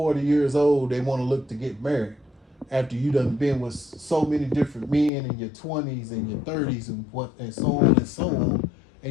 years old, they want to look to get married after you done been with so many different men in your 20s and your 30s and so on and so on.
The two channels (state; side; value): drops out; right; at 5.1 s